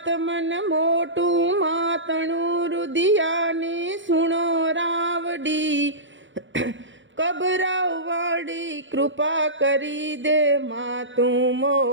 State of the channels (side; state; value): left; late; 0.55 ms